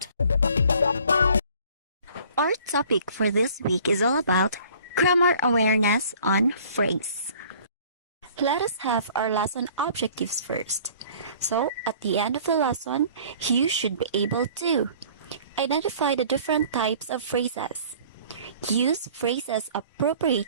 Our topic for this week is all about grammar awareness on phrase. Let us have our lesson objectives first. So, at the end of the lesson, you should be able to identify the different types of phrases. Use phrases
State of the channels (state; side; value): inverted; both; correlation -0.52